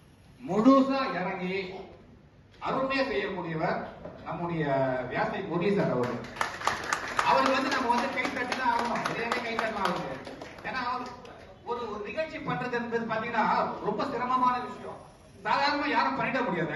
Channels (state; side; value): identical; both; correlation 1.00